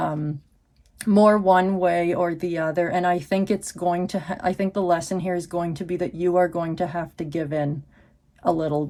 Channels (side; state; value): both; identical; correlation 1.00